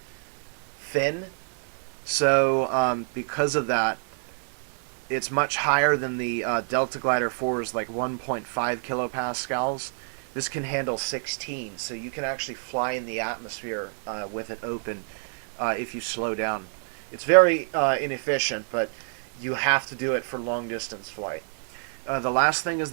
fin. So because of that, it's much higher than the Delta Glider 4's like 1.5 kilopascals. This can handle 16, so you can actually fly in the atmosphere with it open if you slow down. It's very inefficient, but you have to do it for long distance flight. The last thing is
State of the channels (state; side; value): silent; left; 60 dB below the other